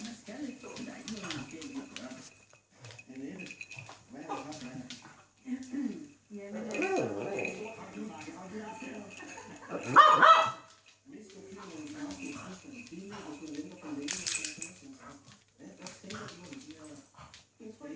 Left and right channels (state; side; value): identical; both; correlation 1.00